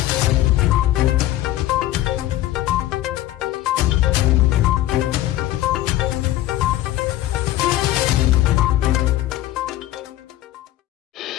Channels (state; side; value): quieter; right; 14.8 dB